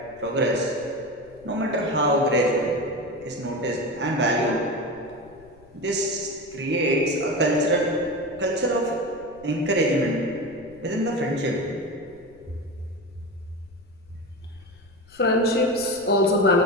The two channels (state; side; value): noise; left; rumble, 26 dB below the sound